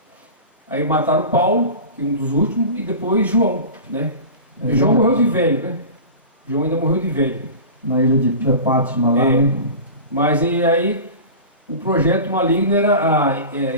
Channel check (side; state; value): both; inverted; correlation -0.33